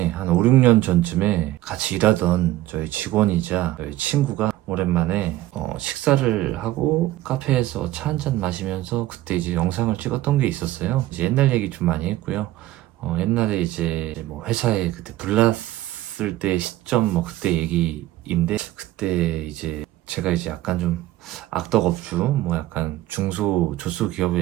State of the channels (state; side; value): quieter; left; 15.8 dB